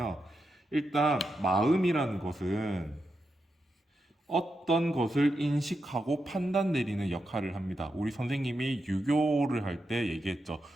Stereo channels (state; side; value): normal; both; correlation 0.86